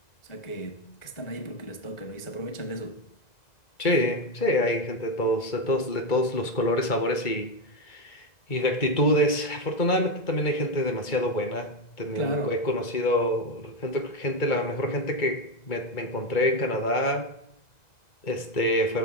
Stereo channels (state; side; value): late; right; 1.9 ms